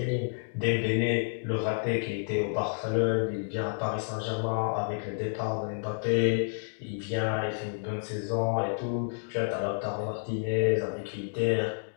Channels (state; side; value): silent; right; digital silence